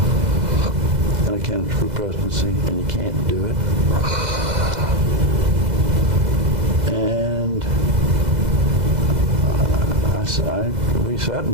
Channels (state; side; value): late; left; 2.0 ms